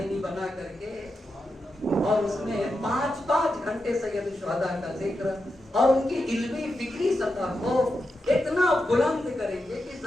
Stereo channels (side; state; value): both; normal; correlation 0.88